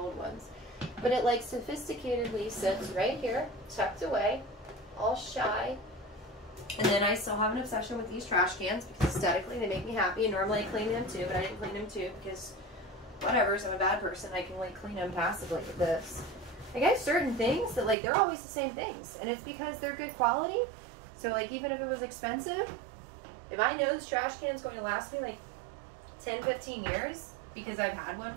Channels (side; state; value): left; drops out; at 17.9 s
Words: ones. But it like sophisticatedly sits right here, tucked away, all shy. And then I still have an obsession with these trash cans because aesthetically they make me happy. And normally I clean them too, but I didn't clean them too because whatever, so I'm a bad person. I can like clean them passively with this. I got certain things that like they're always the same things, and it's because they're good quality. So like even if it was expensive, if I know this trash can is going to last me like 10-15 years, because I've had one